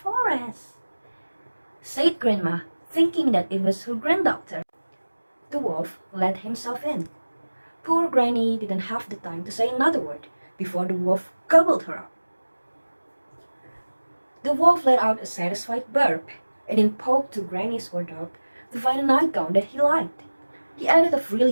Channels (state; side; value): inverted; both; correlation -1.00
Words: said Grandma, thinking that it was her granddaughter. The wolf let himself in. Poor Granny didn't have the time to say another word before the wolf gobbled her up. The wolf let out a satisfied burp and then poked to Granny's wardrobe to find a nightgown that he liked. He added a